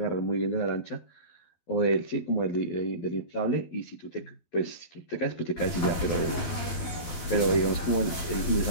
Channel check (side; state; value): right; late; 12 ms